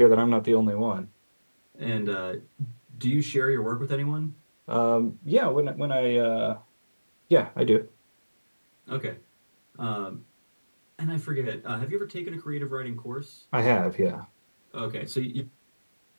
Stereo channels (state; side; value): inverted; both; correlation -1.00